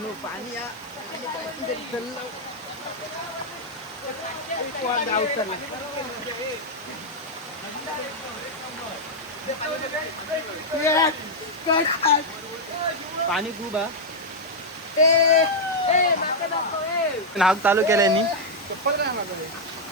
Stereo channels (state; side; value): normal; both; correlation -0.02